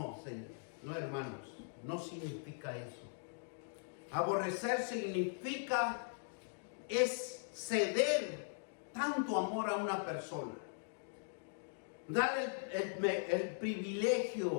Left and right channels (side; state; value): right; silent; digital silence